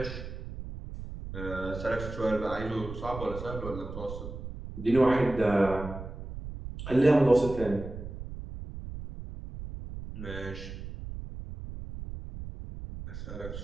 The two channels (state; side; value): noise; right; rumble, 9 dB below the sound